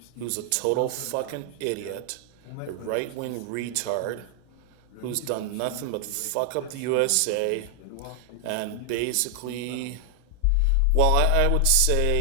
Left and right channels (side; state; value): both; different; correlation 0.00